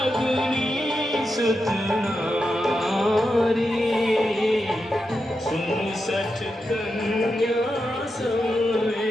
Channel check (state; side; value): normal; both; correlation 0.88